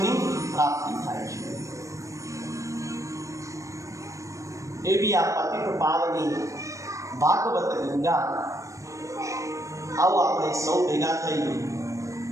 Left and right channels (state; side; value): late; left; 0.15 ms